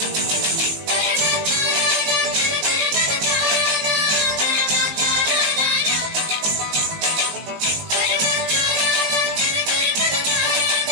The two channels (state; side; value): late; left; 19 ms